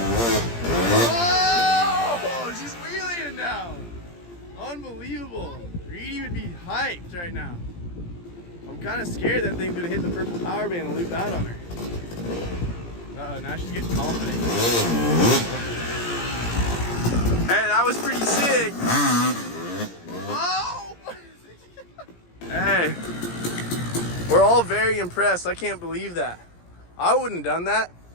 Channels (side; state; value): right; late; 17 ms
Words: Oh, she's wheeling now. Unbelievable. Reedy would be hyped right now. I'm kind of scared that thing's gonna hit the purple power band and loop out on her. Uh-oh, now she's getting confident. Hey, that was pretty sick. Oh! Hey, we're all very impressed. I can't believe that. I wouldn't have done that.